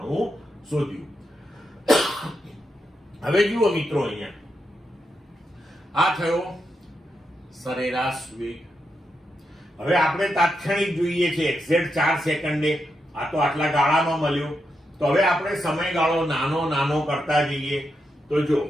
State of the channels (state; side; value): normal; both; correlation 0.85